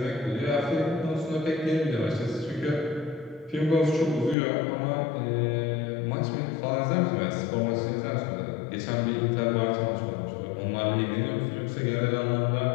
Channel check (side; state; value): right; drops out; at 4.4 s